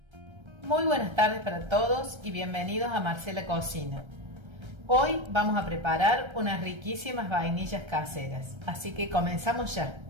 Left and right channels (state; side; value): late; left; 1.3 ms